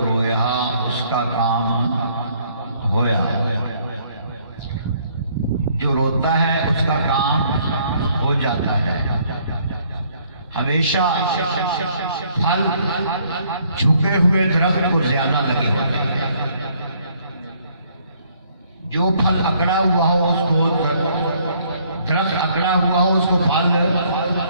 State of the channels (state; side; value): inverted; both; correlation -0.64